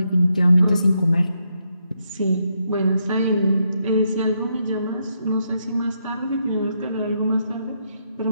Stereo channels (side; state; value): both; inverted; correlation -0.79